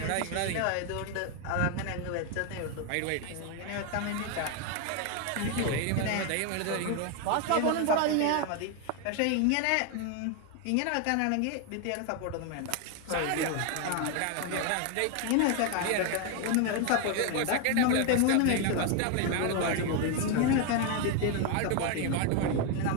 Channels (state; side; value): different; both; correlation 0.01